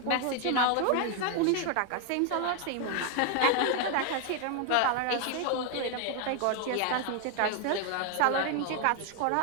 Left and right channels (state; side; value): different; both; correlation 0.01